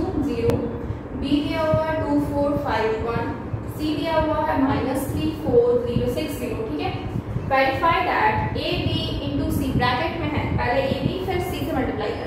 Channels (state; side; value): identical; both; correlation 1.00